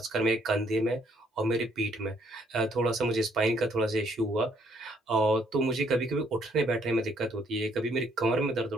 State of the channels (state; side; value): normal; both; correlation 0.68